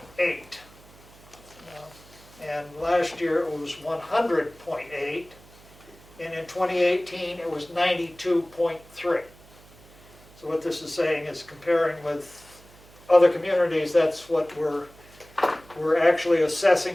And last year it was 100.8, and in 2018 it was 92.3. So what this is saying is comparing with other communities, that's what we're actually assessing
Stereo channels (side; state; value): right; noise; hum, 24 dB below the sound